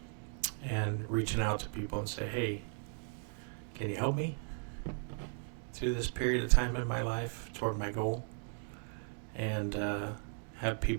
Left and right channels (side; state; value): left; silent; 53 dB below the other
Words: And reaching out to people and say, hey, can you help me? through this period of time in my life toward my goal, and have